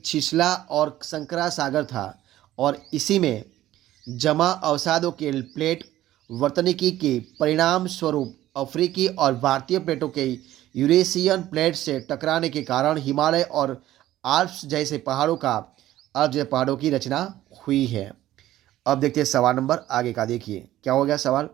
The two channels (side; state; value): left; quieter; 14.2 dB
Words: छिछला और संकरा सागर था और इसी में जमा अवसादों के प्लेट वर्तनिकी के परिणाम स्वरूप अफ्रीकी और भारतीय प्लेटों के यूरेशियन प्लेट से टकराने के कारण हिमालय और आल्प्स जैसे पहाड़ों की रचना हुई है। अब देखते हैं सवाल नंबर आगे का। देखिए क्या हो गया सवाल